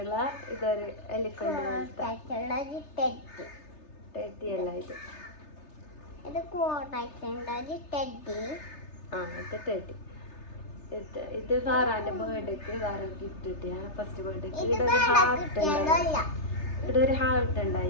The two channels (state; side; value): late; right; 3.3 ms